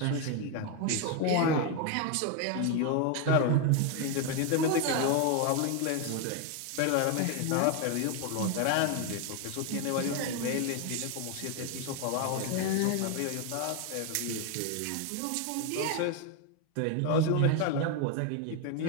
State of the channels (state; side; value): different; both; correlation 0.01